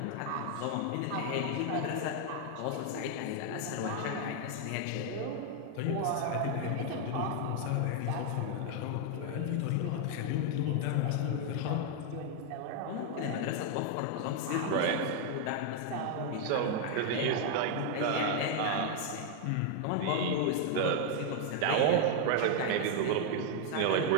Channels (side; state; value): both; different; correlation 0.00